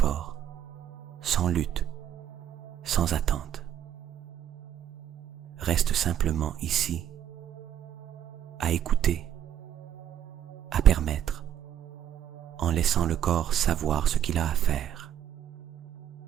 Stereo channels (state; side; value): quieter; left; 10.3 dB